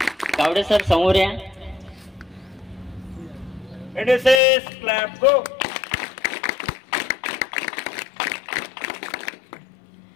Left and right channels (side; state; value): right; drops out; at 4.4 s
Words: कावडे सर समोर या. NSS clap go.